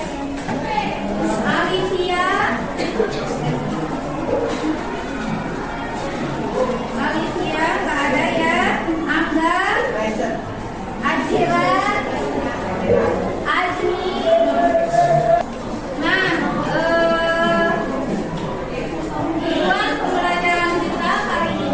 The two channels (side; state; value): both; identical; correlation 1.00